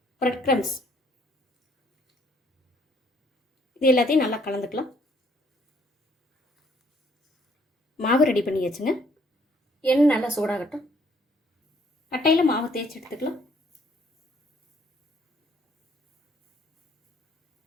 பிரெட் க்ரம்ஸ். இது எல்லாத்தையும் நல்லா கலந்துக்கலாம். மாவு ரெடி பண்ணி வச்சுங்க. எண்ணெய் நல்லா சூடாகட்டும். கட்டையில் மாவு தேய்ச்சி எடுத்துக்கலாம்.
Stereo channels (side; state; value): both; normal; correlation 0.65